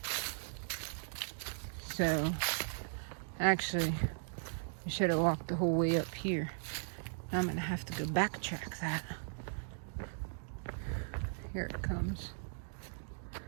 So, actually, I should have walked the whole way up here. Now I'm going to have to go backtrack that. Here it comes.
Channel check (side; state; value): left; silent; digital silence